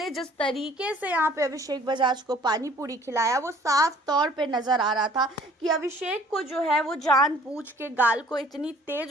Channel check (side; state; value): both; normal; correlation 0.55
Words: जिस तरीके से यहाँ पे अभिषेक बजाज को पानी पूरी खिलाया वो साफ तौर पे नजर आ रहा था कि अभिषेक को जो है वो जानबूझ के गाल को इतनी